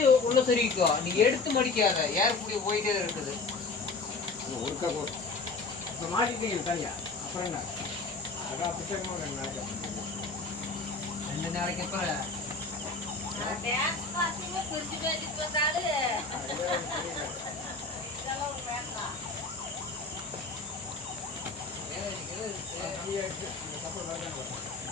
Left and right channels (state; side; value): quieter; right; 3.8 dB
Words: உள்ள சொருகிக்கோ. நீ எடுத்து மடிக்காத ஏறக்கூடிய போயிட்டே இருக்குது. ஒருக்கா இப்போ மாட்டிட்டீங்க தனியா அப்புறம் என்ன அதான் புத்தகமா 2 நாளைக்கு அப்புறம்